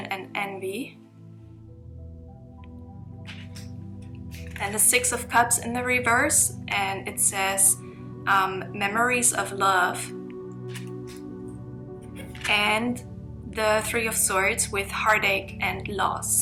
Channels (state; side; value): identical; both; correlation 1.00